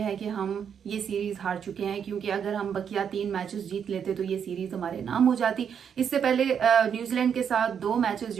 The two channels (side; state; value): left; quieter; 7.7 dB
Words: है कि हम ये सीरीज हार चुके हैं, क्योंकि अगर हम बकिया 3 मैचेस जीत लेते तो ये सीरीज हमारे नाम हो जाती। इससे पहले न्यूजीलैंड के साथ 2 मैचेस